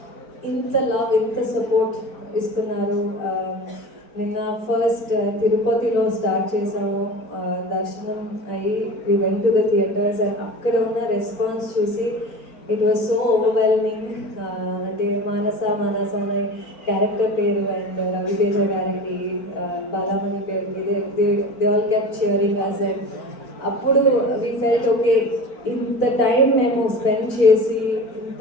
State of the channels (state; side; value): late; right; 4.4 ms